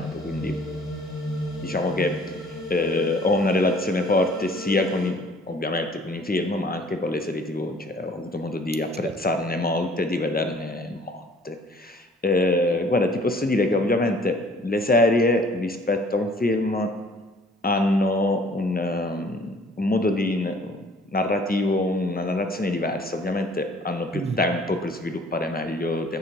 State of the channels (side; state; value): both; normal; correlation 0.55